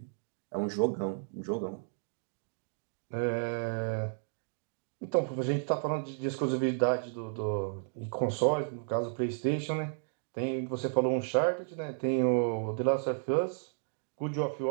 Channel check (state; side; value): silent; left; digital silence